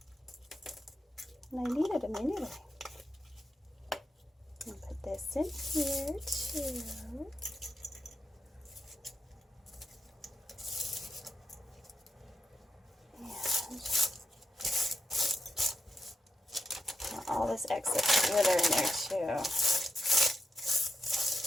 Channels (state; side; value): normal; both; correlation 0.85